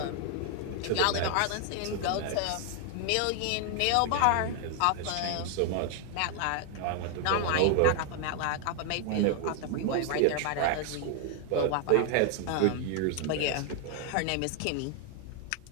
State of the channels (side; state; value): both; different; correlation 0.00